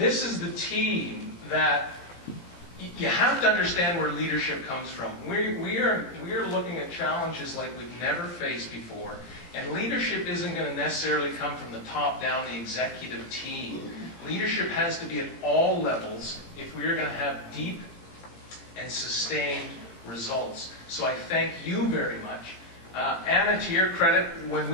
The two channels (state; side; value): late; right; 17 ms